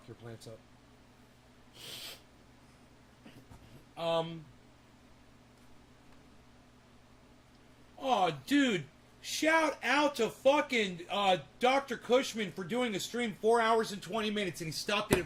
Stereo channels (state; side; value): identical; both; correlation 1.00